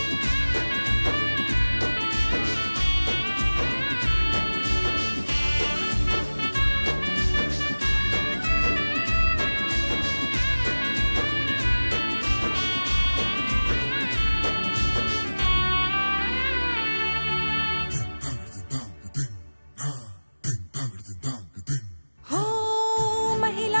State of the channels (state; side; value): inverted; both; correlation -1.00